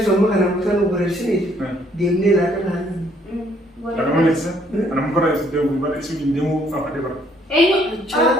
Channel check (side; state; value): both; normal; correlation 0.65